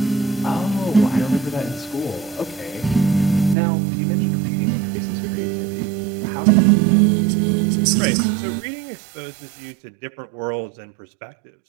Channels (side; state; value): left; drops out; at 3.6 s